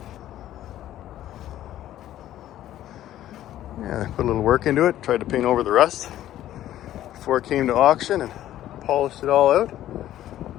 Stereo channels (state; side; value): quieter; right; 12.9 dB